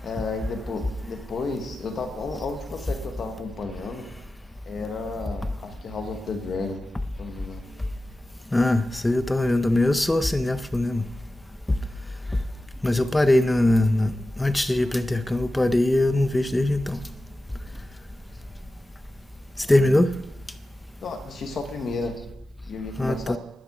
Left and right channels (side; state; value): both; normal; correlation 0.94